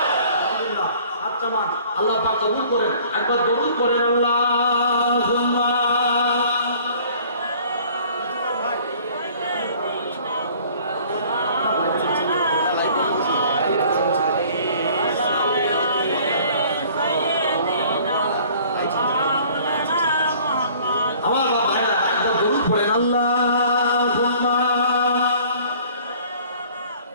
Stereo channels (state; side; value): inverted; both; correlation -0.52